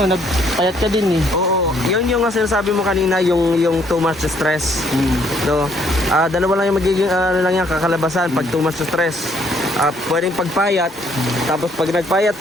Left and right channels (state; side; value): normal; both; correlation 0.66